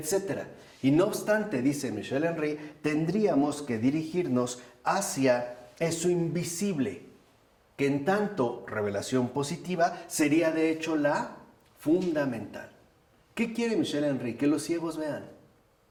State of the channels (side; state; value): both; identical; correlation 1.00